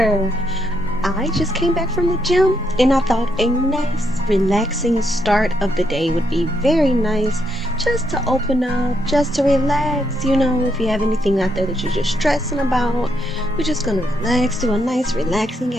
I just came back from the gym and I thought a nice, relaxing start of the day would be very nice just to open up, just to relax. You know, if you have anything out there that you're just stressing about, we're just gonna relax, do a nice, relaxing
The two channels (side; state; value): both; normal; correlation 0.78